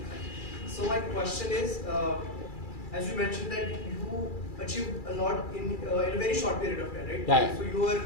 So my question is, as you mentioned that you achieved a lot in a very short period of time, right? Yeah. So you were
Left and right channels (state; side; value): late; right; 2.4 ms